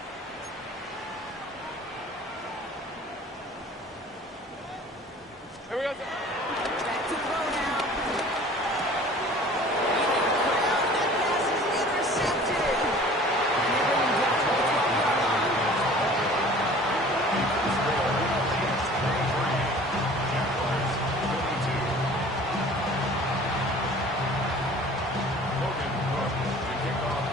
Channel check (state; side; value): normal; both; correlation 0.47